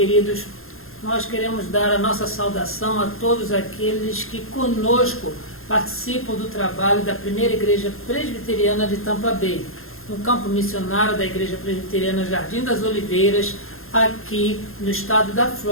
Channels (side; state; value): right; late; 0.61 ms